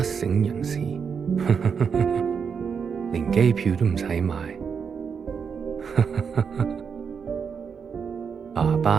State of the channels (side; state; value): left; quieter; 6.4 dB